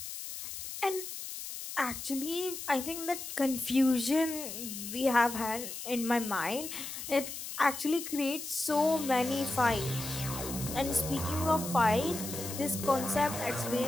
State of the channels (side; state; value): left; noise; hiss, 8 dB below the sound